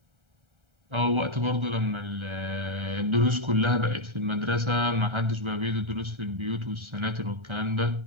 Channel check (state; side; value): late; left; 1.3 ms